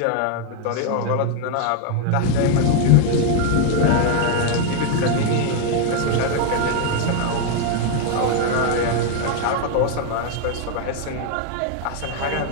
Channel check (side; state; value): both; different; correlation 0.01